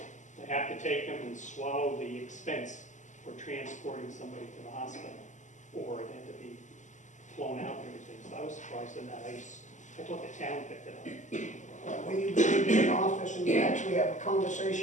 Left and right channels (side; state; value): right; late; 0.35 ms